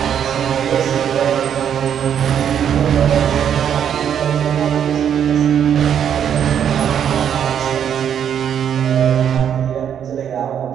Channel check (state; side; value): quieter; left; 8.8 dB